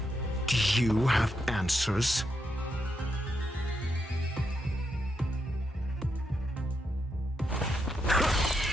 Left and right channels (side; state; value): both; normal; correlation 0.82